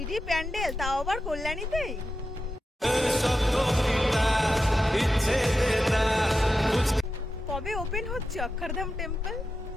প্যান্ডেল, তাও আবার কল্যাণীতেই। কবে ওপেন হচ্ছে অক্ষরধাম টেম্পল?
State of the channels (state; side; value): normal; both; correlation 0.90